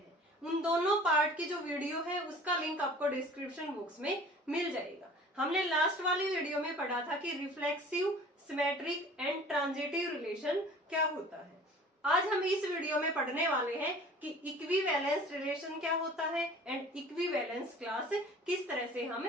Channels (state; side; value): normal; both; correlation 0.46